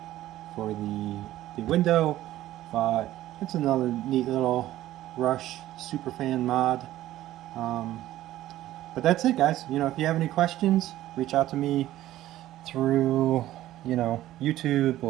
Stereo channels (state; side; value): quieter; left; 14.4 dB